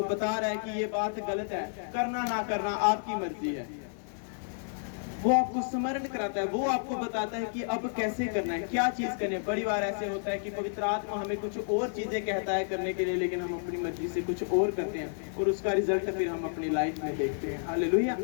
बता रहा है कि ये बात गलत है, करना ना करना आपकी मर्जी है। वो आपको स्मरण कराता है, वो आपको बताता है कि अब कैसे करना है, क्या चीज करनी है। बड़ी बार ऐसे होता है कि पवित्र आत्मा हमें कुछ और चीजें कहता है करने के लिए, लेकिन हम अपनी मर्जी से कुछ और करते हैं, और उसका रिजल्ट फिर हम अपनी लाइफ में देखते हैं। हालेलुया।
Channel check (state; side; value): silent; right; digital silence